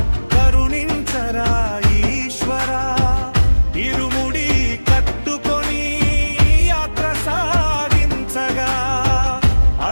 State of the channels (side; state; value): both; inverted; correlation -1.00